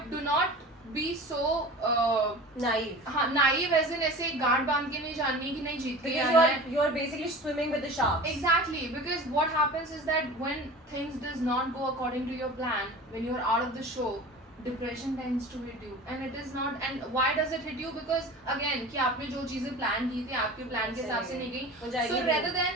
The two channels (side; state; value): both; normal; correlation 0.37